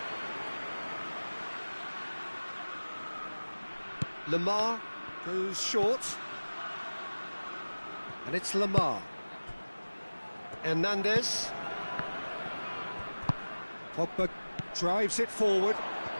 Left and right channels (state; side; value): inverted; both; correlation -1.00